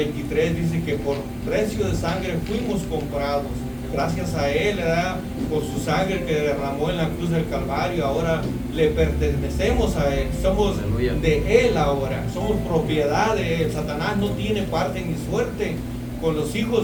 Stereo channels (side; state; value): both; identical; correlation 1.00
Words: dice que por precio de sangre fuimos comprados. Gracias a Él, ¿verdad? Por su sangre que derramó en la cruz del Calvario, ahora le pertenecemos a Él, somos Aleluya. de Él ahora, somos propiedad de Él. Satanás no tiene parte ni suerte con los